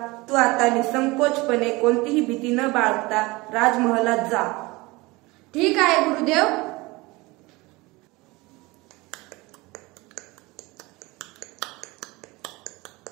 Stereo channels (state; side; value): quieter; left; 22.9 dB